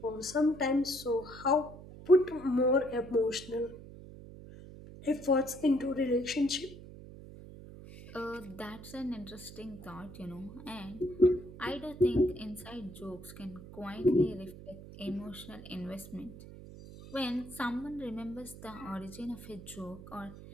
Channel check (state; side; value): noise; right; hum, 15 dB below the sound